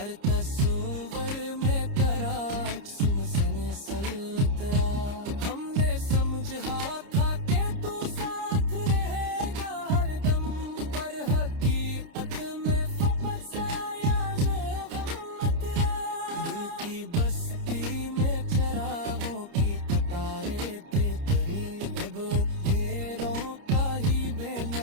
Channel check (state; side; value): late; left; 30 ms